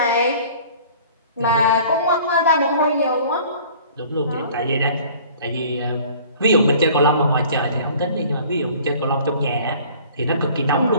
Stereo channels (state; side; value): inverted; both; correlation -0.49